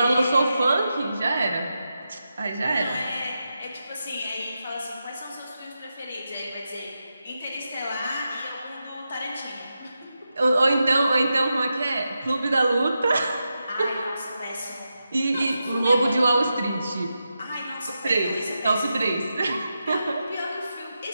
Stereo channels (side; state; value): both; inverted; correlation -0.88